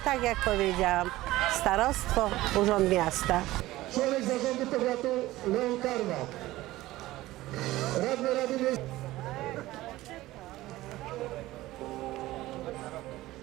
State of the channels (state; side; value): quieter; left; 17.1 dB